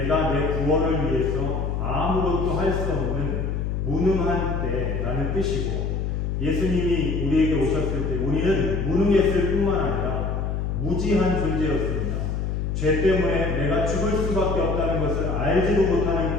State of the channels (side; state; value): left; noise; hum, 1 dB below the sound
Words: 내 구원을 위해서 아무것도 할 수 없는 무능한 때라는 뜻이고 예수님이 우리에게 오셨을 때 우리는 무능했을 뿐만 아니라 무지한 존재였습니다. 죄 때문에 내가 죽을 수밖에 없다는 것을 알지도 못하는